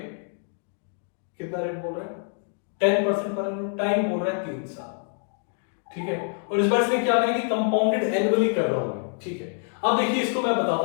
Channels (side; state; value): right; silent; 58 dB below the other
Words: कितना रेट बोल रहा है 10% पर एनम, टाइम बोल रहा है 3 साल, ठीक है, और इस बार इसने क्या कहा कि कंपाउंडेड एनुअली कर रहा हूं, ठीक है। अब देखिए इसको मैं बताता